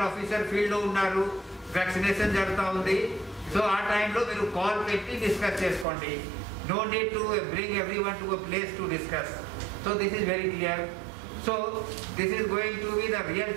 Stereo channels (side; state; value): left; drops out; at 5.9 s